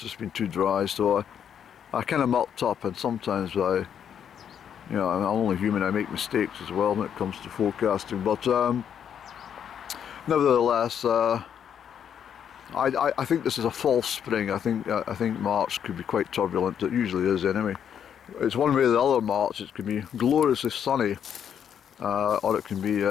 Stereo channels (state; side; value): quieter; right; 8.6 dB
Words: been too dry, so I kind of mucked up, and sometimes you know, I'm only human, I make mistakes as well when it comes to forecasting, but nevertheless, I think this is a false spring. I think March could be quite turbulent. It usually is anyway. It's one way or the other. March, it can be gloriously sunny, or it can be